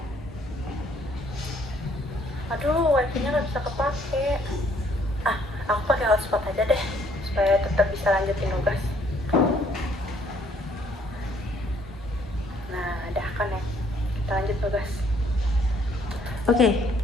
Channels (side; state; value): both; normal; correlation 0.65